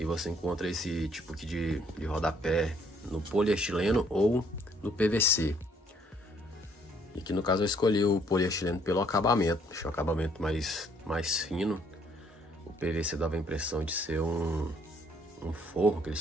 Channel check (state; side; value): normal; both; correlation 0.65